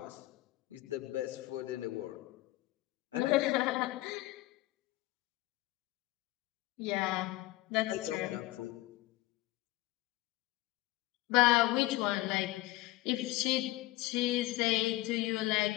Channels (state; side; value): quieter; right; 18.4 dB